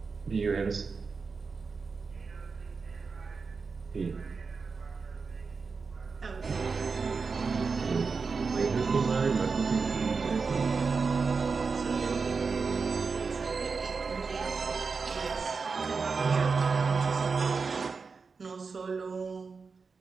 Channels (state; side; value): quieter; left; 4.8 dB